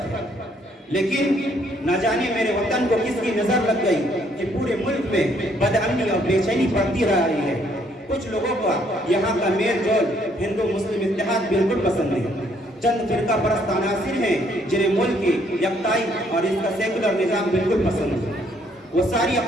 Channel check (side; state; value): both; normal; correlation 0.67